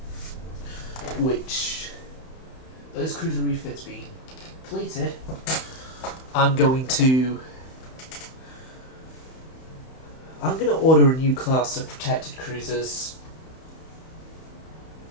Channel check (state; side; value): late; right; 31 ms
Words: Those cruiser refits being completed, I'm going to order a new class of protected cruisers,